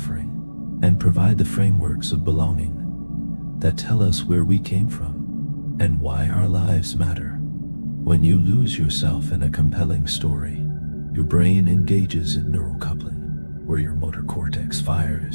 and provide the frameworks of belonging that tell us where we came from and why our lives matter. When you lose yourself in a compelling story, your brain engages in neural coupling, where your motor cortex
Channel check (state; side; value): inverted; both; correlation -1.00